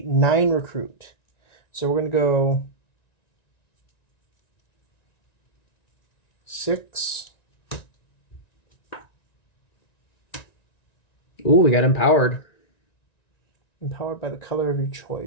9 recruit. So we're gonna go 6. Ooh, we got empowered. Empowered by the color of your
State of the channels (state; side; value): late; right; 1.9 ms